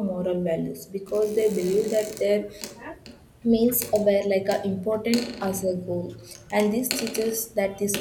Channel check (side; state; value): both; identical; correlation 1.00